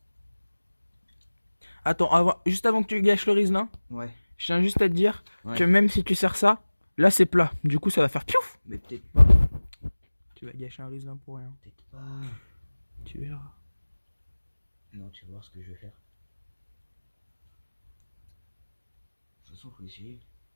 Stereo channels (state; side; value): inverted; both; correlation -1.00